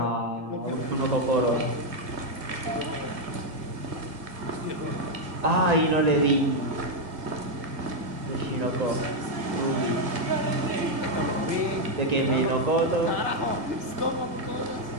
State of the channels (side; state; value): left; late; 1.9 ms